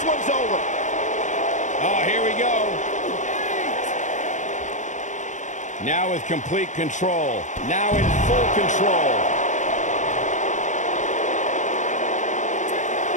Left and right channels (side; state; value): right; late; 0.35 ms